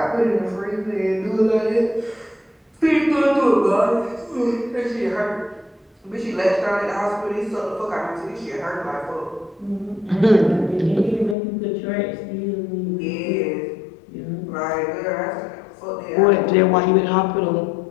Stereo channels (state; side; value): drops out; right; at 11.4 s